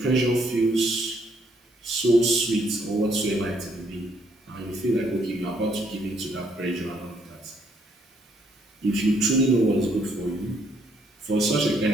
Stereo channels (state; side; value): normal; both; correlation 0.69